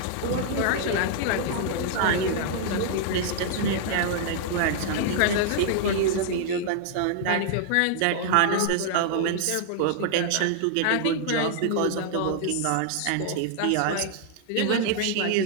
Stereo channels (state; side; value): different; both; correlation 0.00